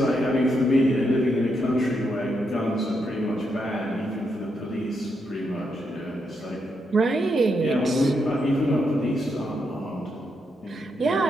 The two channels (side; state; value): both; normal; correlation 0.81